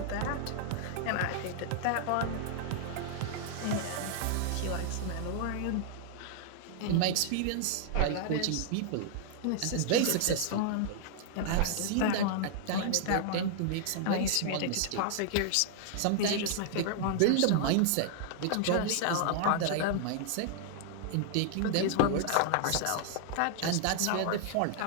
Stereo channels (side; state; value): both; different; correlation -0.01